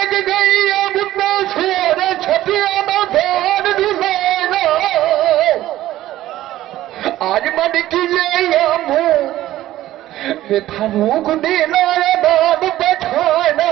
गई अब ना सोर छपिया ना धान दुलाना आज मन की ले मुँह फारूक देना बाब बैठाना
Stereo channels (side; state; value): left; quieter; 14.4 dB